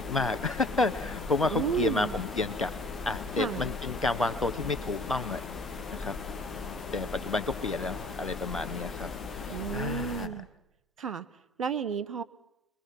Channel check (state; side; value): normal; both; correlation 0.49